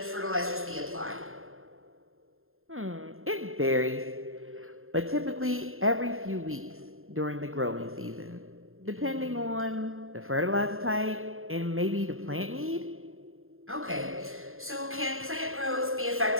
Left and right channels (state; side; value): late; left; 0.61 ms